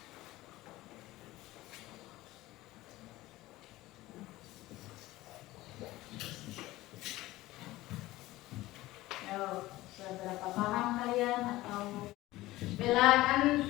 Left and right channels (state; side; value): quieter; right; 17.7 dB